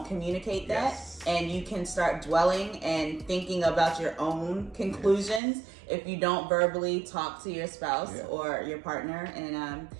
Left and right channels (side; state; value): left; drops out; at 5.4 s